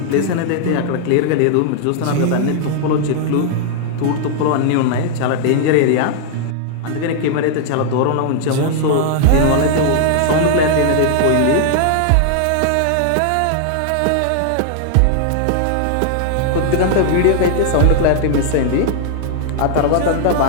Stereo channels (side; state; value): both; different; correlation 0.00